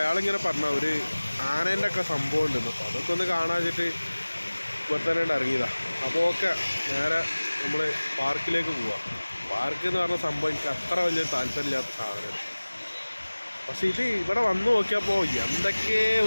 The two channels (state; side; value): inverted; both; correlation -1.00